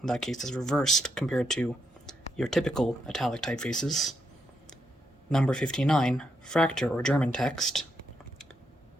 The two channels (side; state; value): both; normal; correlation 0.79